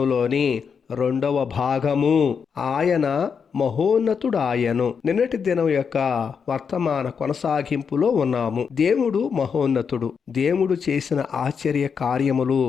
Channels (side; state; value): right; quieter; 6.3 dB